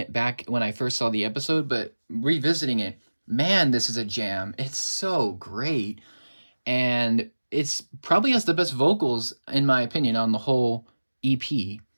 back when I first saw the episode, but revisiting it, man, this is a jam. It's so great, and it's probably has the best vocals in my opinion on the whole EP.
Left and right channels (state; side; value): inverted; both; correlation -1.00